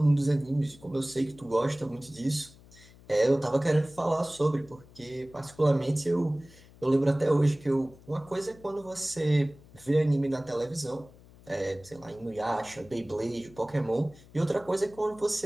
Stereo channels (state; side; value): noise; left; hum, 23 dB below the sound